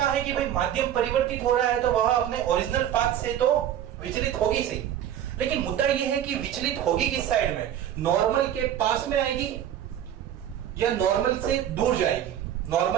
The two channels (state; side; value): quieter; left; 10.7 dB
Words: है कि भाई माध्यम परिवर्तित हो रहा है, तो वह अपने ओरिजिनल पाथ से तो विचलित होगी सही, लेकिन मुद्दा यह है कि विचलित होगी किस साइड में, नॉर्मल के पास में आएगी या नॉर्मल से दूर जाएगी।